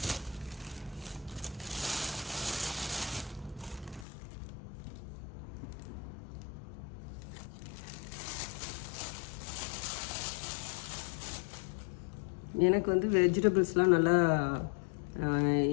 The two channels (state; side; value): drops out; right; at 4.0 s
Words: எனக்கு வந்து வெஜிடபிள்ஸ்லாம் நல்லா